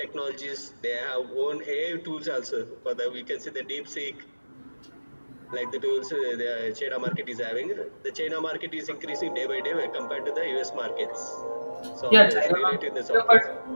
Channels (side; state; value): both; inverted; correlation -1.00